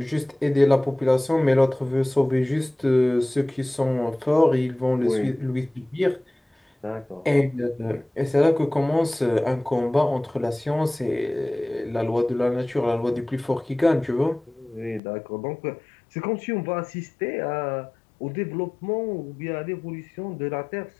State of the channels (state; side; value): drops out; right; at 15.0 s